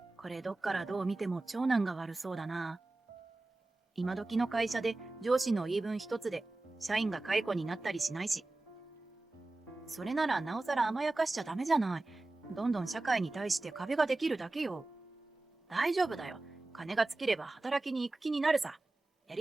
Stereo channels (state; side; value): quieter; left; 3.0 dB